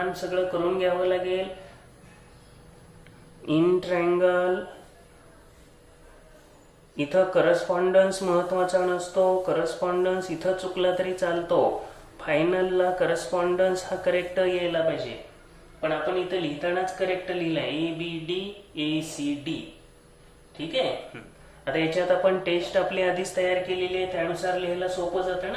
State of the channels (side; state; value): both; identical; correlation 1.00